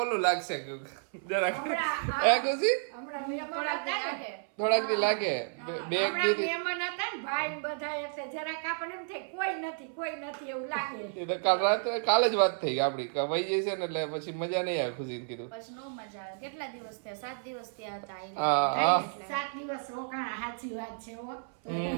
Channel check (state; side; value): silent; left; 57 dB below the other